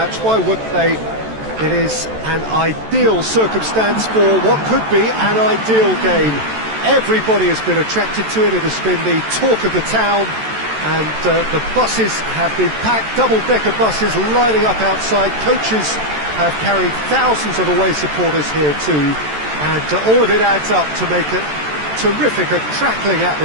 Why wouldn't they? It is an ideal circumstance for what could be an ideal game. Everybody has been attracted to it. It has been the talk of the town, and the buses have been packed, double-decker buses lining up outside. Coaches have carried thousands of away supporters here too, and all of it adds up to make it terrific, a crackling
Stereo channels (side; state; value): left; late; 14 ms